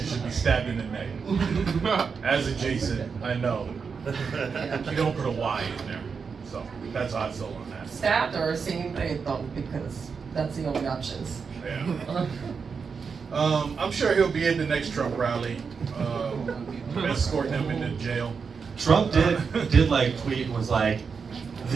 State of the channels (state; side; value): quieter; left; 5.6 dB